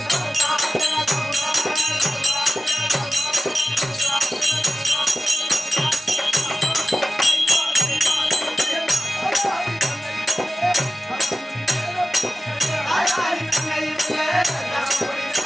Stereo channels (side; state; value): both; normal; correlation 0.95